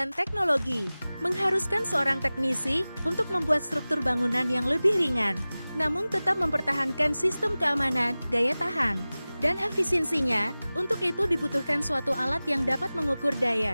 teknologi mengharuskan seorang teknisi untuk membuat struktur bangunan yang lebih ringan, namun tetap mempertahankan sistem keamanan, daya tahan, dan efisiensinya. Untuk itu dibutuhkan suatu alat yang dapat mengukur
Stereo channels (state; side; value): inverted; both; correlation -0.98